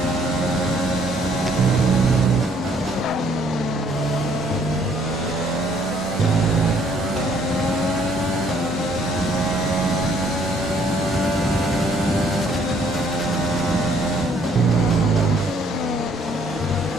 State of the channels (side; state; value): both; normal; correlation 0.64